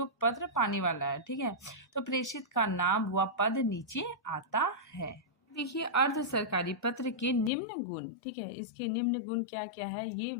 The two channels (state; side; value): drops out; right; at 7.5 s